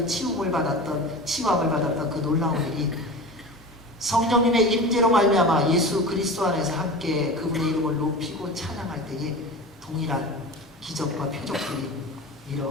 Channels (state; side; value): normal; both; correlation 0.32